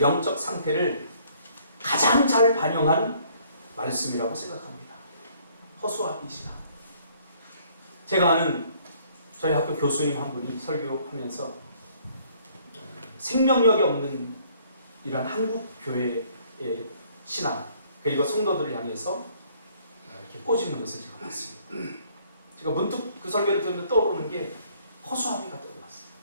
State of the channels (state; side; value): inverted; both; correlation -0.61